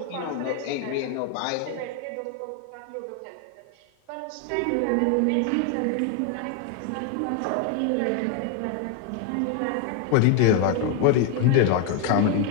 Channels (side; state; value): both; different; correlation 0.01